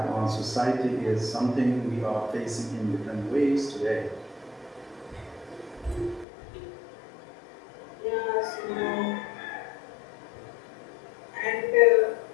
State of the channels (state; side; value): drops out; right; at 6.2 s